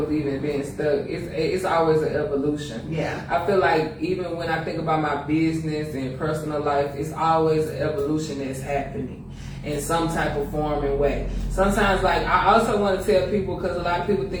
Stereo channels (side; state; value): both; identical; correlation 1.00